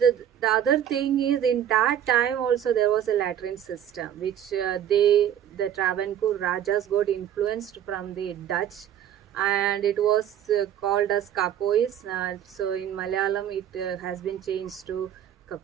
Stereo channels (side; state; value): left; quieter; 10.2 dB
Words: other thing is, in that time also there was a latrine system which the Travancore Rajas got influenced from the Dutch, and it was called as Kapois. So in Malayalam it has been changed to